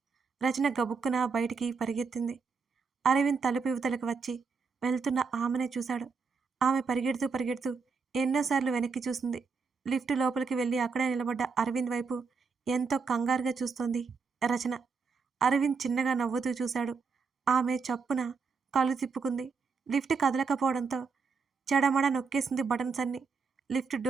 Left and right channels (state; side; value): quieter; left; 5.1 dB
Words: రచన గబుక్కున బయటికి పరిగెత్తింది. అరవింద్ తలుపు ఇవతలకు వచ్చి వెళ్తున్న ఆమెనే చూశాడు. ఆమె పరిగెడుతూ పరిగెడుతూ ఎన్నోసార్లు వెనక్కి చూసింది. లిఫ్ట్ లోపలికి వెళ్ళి అక్కడే నిలబడ్డ అరవింద్ వైపు ఎంతో కంగారుగా చూస్తోంది రచన. అరవింద్ చిన్నగా నవ్వుతూ చూశాడు. ఆమె చప్పున కళ్ళు తిప్పుకుంది. లిఫ్ట్ కదలకపోవడంతో చెడమడ నొక్కేసింది బటన్స్ అన్ని. లిఫ్ట్